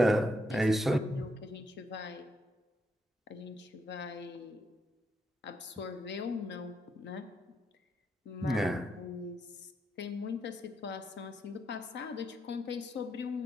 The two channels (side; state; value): both; normal; correlation 0.80